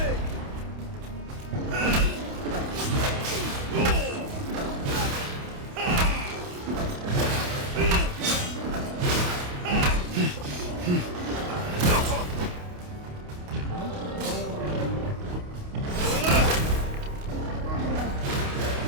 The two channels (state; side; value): late; left; 28 ms